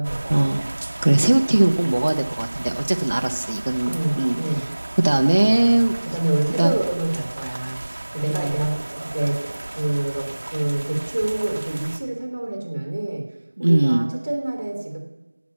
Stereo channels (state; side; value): inverted; both; correlation -1.00